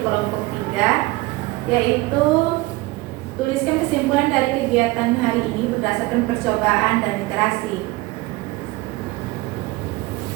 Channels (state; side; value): quieter; left; 21.1 dB